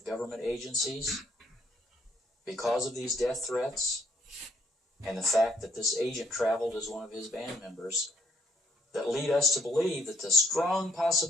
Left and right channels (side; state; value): both; normal; correlation 0.68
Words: government agencies, because of these death threats, and the fact that this agent traveled as one of his band members, that lead us to believe that the strong